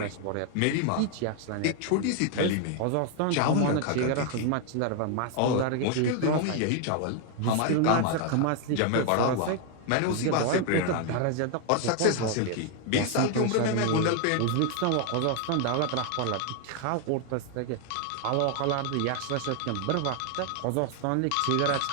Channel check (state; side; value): different; both; correlation 0.00